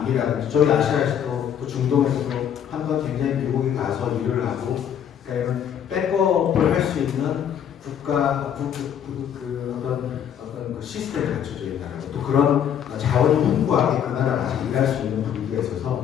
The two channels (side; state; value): right; quieter; 9.0 dB